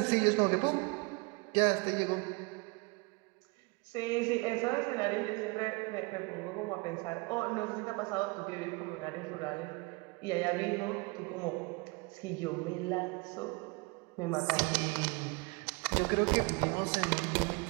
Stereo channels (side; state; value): left; quieter; 27.9 dB